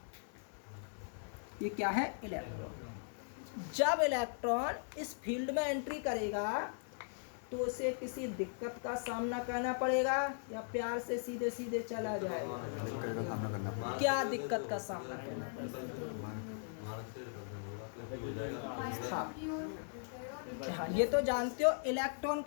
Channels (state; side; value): silent; right; digital silence